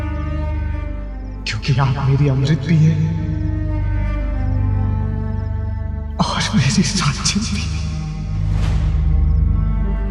क्योंकि आप मेरी अमृत भी है और मेरी रंजन भी।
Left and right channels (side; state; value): both; identical; correlation 1.00